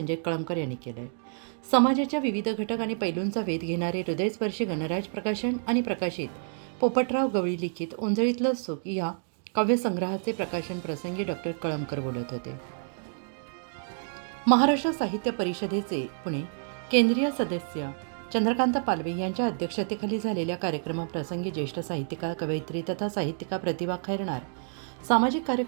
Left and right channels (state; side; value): silent; left; digital silence